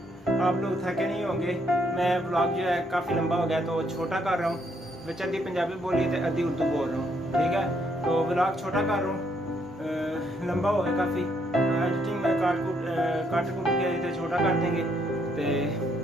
आप लोग थके नहीं होंगे। मैं ब्लॉग जो है काफ़ी लंबा हो गया तो छोटा कर रहा हूँ, विच अद्धी पंजाबी बोली तो अद्धी उर्दू बोल रहा हूँ, ठीक है। तो ब्लॉग छोटा कर रहा हूँ, लंबा हो गया काफ़ी। एडिटिंग में काट कूट के तो छोटा कर देंगे। तो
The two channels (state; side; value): normal; both; correlation 0.72